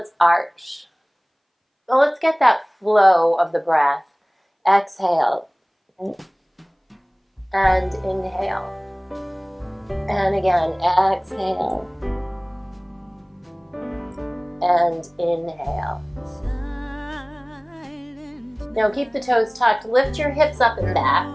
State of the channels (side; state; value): both; identical; correlation 1.00